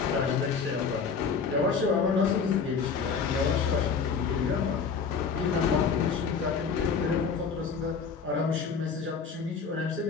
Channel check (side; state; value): right; quieter; 5.7 dB